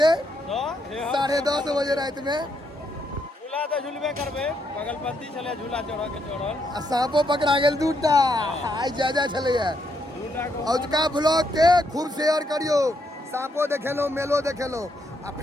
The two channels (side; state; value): both; normal; correlation 0.77